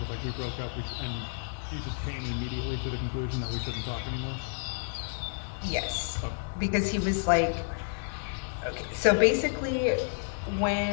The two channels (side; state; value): right; silent; digital silence